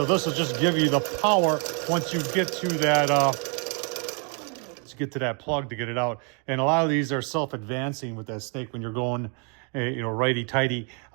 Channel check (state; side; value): quieter; left; 38.0 dB